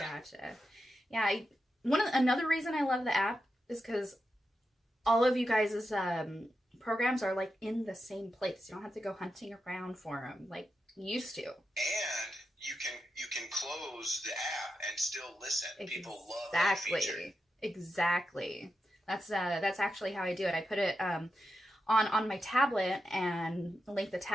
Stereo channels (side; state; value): both; normal; correlation 0.88